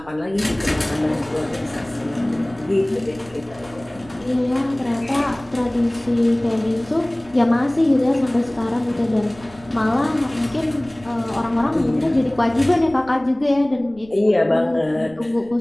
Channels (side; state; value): right; noise; rumble, 23 dB below the sound